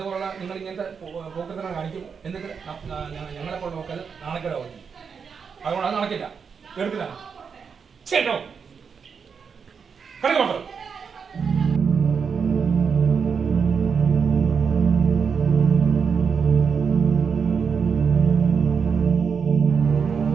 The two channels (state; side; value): quieter; left; 6.1 dB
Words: നിങ്ങൾ ഇങ്ങനത്തെ പോക്കത്തിനെ കാണിക്കും. എന്നിട്ട് ഞങ്ങളെപ്പോൾ നോക്കാതെ നാണക്കേടാ വന്നു. അതുകൊണ്ട് അത് നടക്കില്ല. എടുക്കില്ല. കേട്ടോ? കടക്കോട്ടോ.